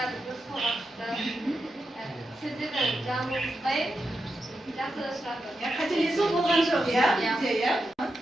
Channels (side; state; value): both; normal; correlation 0.88